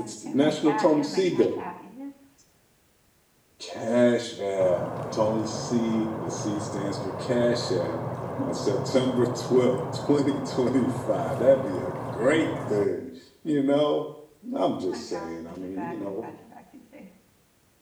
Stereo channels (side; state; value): both; identical; correlation 1.00